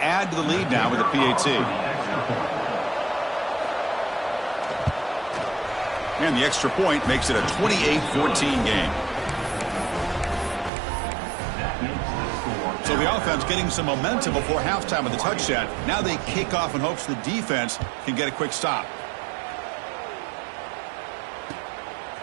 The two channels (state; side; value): drops out; left; at 10.7 s